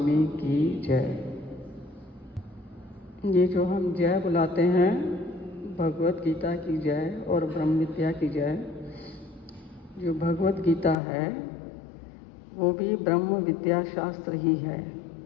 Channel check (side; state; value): right; drops out; at 11.0 s